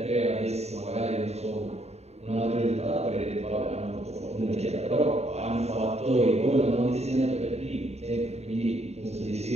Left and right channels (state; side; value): late; left; 0.31 ms